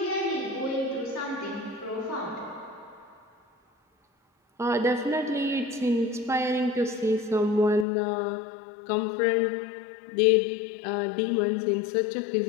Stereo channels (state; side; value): drops out; right; at 7.9 s